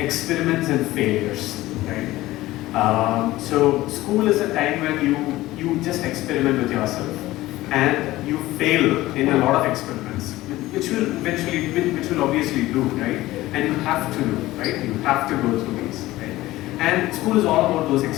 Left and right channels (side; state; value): right; quieter; 17.2 dB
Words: and failures, right? So school is a time when you just experiment with yourself, and you fail in a lot of experiments, which will obviously do, right? And you have to do, right? You have to go through these, right? And school is all about those